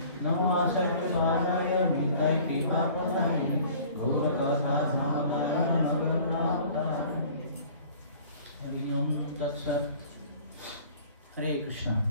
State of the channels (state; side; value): inverted; both; correlation -0.49